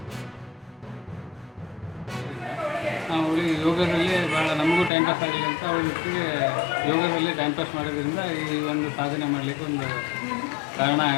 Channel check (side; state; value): right; drops out; at 4.9 s